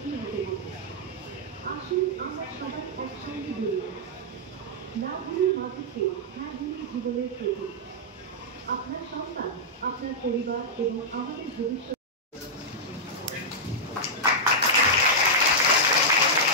হতে হবে। আসুন আমরা সবাই একসঙ্গে বলি, না ভুলি মাদককে, হ্যাঁ ভুলি জীবনের প্রতি। আপনার সন্তান, আপনার পরিবার এবং আমাদের ভবিষ্যৎ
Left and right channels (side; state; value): both; normal; correlation -0.08